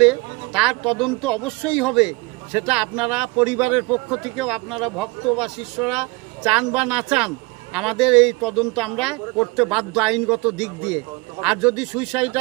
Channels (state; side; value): quieter; left; 24.8 dB